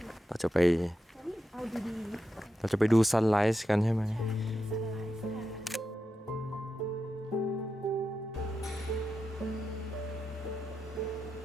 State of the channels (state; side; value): normal; both; correlation 0.88